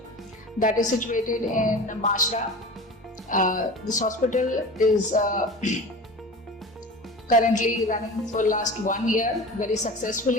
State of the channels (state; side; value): normal; both; correlation 0.35